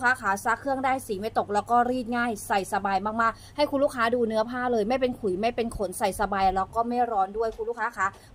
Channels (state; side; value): identical; both; correlation 1.00